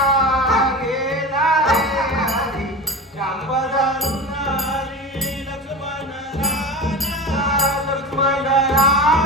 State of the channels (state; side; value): normal; both; correlation 0.28